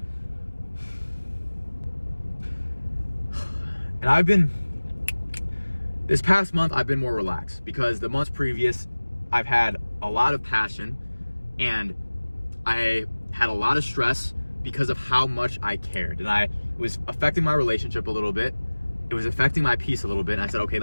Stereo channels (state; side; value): inverted; both; correlation -1.00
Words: And this past month, I've been more relaxed because the months previous, I've had a lot of passion and I had a lot of stress because of how much I cared. And I was affecting my relationship a little bit. It was affecting my peace a little bit. And I said, okay,